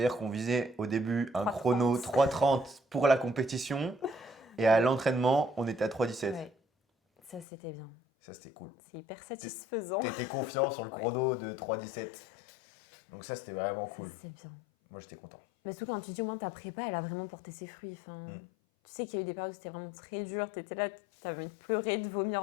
qu'on visait au début un 3,30. chrono 3:30 pour la compétition et à Ouais. l'entraînement on était à 3:17. Ouais, ça c'était bien. Ça c'était cool. C'est hyper satisfaisant. T'étais confiant sur le Ouais. chrono de 3:17. Donc ça c'était vraiment cool. C'est bien. Moi j'étais content. Mais surtout quand tu dis au moins ta prépa, elle a vraiment porté ses fruits. Enfin, tu sais qu'il y a eu des périodes où c'était vraiment très dur. Tu étais là, tu avais envie de pleurer, de vomir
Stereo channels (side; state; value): right; drops out; at 7.5 s